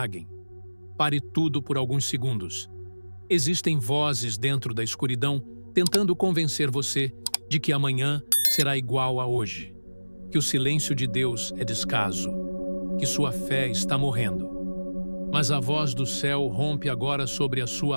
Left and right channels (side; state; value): both; inverted; correlation -1.00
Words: pare tudo por alguns segundos. Existem vozes dentro da escuridão tentando convencer você de que amanhã será igual a hoje, que o silêncio de Deus é descaso, que sua fé está morrendo. Mas a voz do céu rompe agora sobre a sua